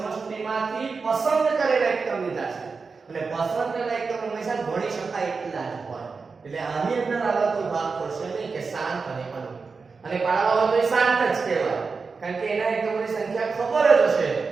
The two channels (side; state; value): left; quieter; 4.7 dB